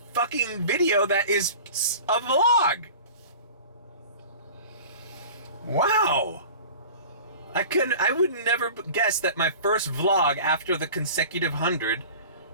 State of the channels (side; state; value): both; inverted; correlation -0.39